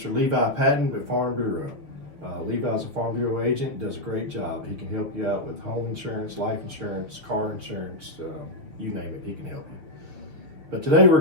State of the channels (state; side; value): late; left; 6.6 ms